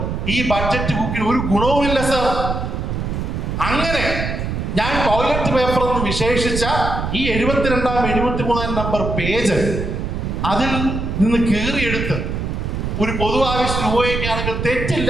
ഈ ബഡ്ജറ്റ് ബുക്കിൽ ഒരു ഗുണവുമില്ല സർ. അങ്ങനെ ഞാൻ ടോയ്ലറ്റ് പേപ്പർ എന്ന് വിശേഷിച്ച ഈ 72-ാം 73-ാം നമ്പർ പേജ് അതിൽ നിന്ന് കീറിയെടുത്ത് ഒരു പൊതു ആവശ്യത്തിന് ഉപയോഗിക്കുകയാണെങ്കിൽ തെറ്റില്ല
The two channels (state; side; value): noise; right; rumble, 3 dB below the sound